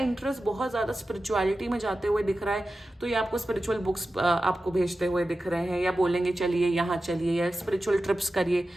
बहुत ज्यादा स्पिरिचुअलिटी में जाते हुए दिख रहा है, तो ये आपको स्पिरिचुअल बुक्स आपको भेजते हुए दिख रहे हैं, या बोलेंगे चलिए यहाँ चलिए, या स्पिरिचुअल ट्रिप्स करिए।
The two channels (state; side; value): normal; both; correlation 0.93